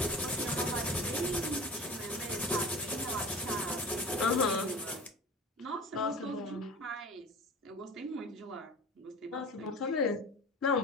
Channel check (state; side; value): normal; both; correlation 0.36